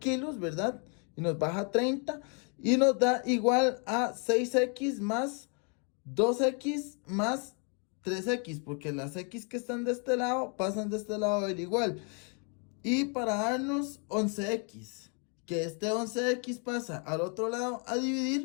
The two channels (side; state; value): right; quieter; 38.0 dB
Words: ¿verdad? Y nos baja 30. Y nos da igual a 6X más 2X más 3X. Porque las X que están de este lado pasan de este lado del igual. Y para darnos 11X, que este 11X pasa al otro lado a